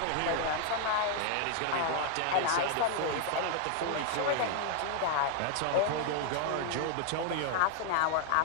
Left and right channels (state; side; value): different; both; correlation 0.00